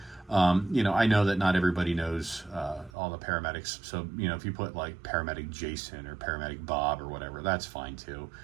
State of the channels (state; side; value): drops out; left; at 2.9 s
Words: I know that not everybody knows all the paramedics. So, if you put like paramedic Jason or paramedic Bob or whatever, that's fine too.